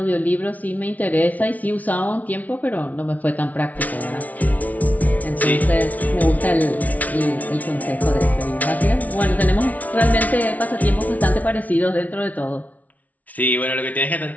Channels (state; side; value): late; right; 0.072 ms